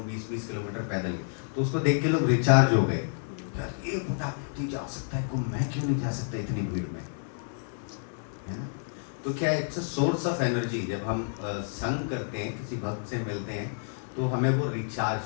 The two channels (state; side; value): silent; right; digital silence